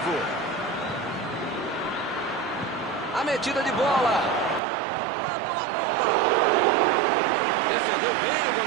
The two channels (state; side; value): drops out; left; at 4.6 s